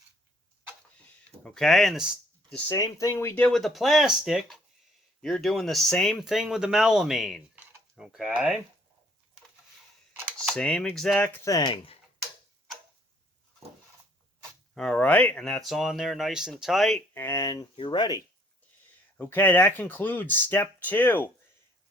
Okay, and the same thing we did with the plastic, you're doing the same thing with the melamine. Okay, same exact thing. All right, and that's on there nice and tight, and you're ready. Okay, that concludes step 2.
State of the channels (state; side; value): normal; both; correlation 0.62